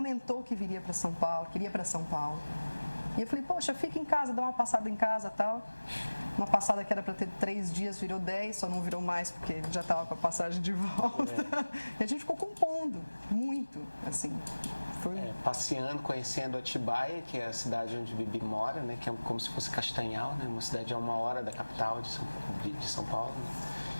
que viria para São Paulo, queria para São Paulo. E eu falei, poxa, fica em casa, dá uma passada em casa e tal. Uma passada que era para ter 3 dias, virou 10, só não virou mais porque já estava com a passagem de volta. E a gente ficou compondo, muito, assim. Foi... passeando, conhecendo Atibaia, que é a cidade onde Bibi mora, né? Que é como se fosse Castanhal, né? Uma cidade a 1 hora da capital de São Paulo. Né?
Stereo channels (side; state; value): both; inverted; correlation -1.00